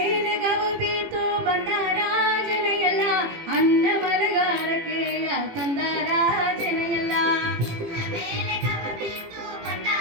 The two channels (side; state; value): left; late; 18 ms